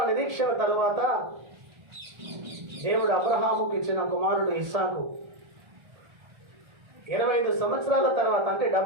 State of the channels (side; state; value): left; late; 1.4 ms